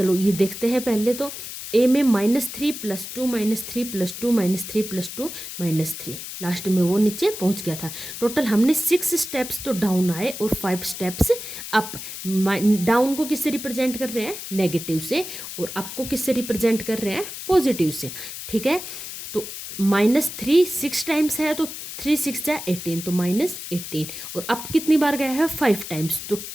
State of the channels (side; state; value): left; noise; hiss, 9 dB below the sound